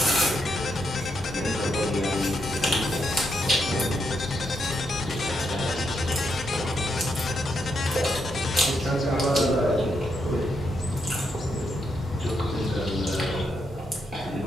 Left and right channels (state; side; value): normal; both; correlation 0.80